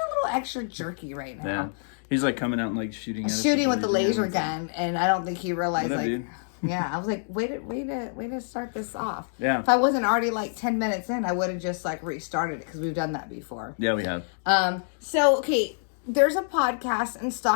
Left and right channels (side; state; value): right; silent; digital silence